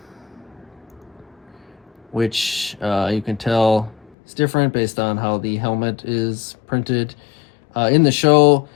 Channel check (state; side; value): drops out; right; at 4.2 s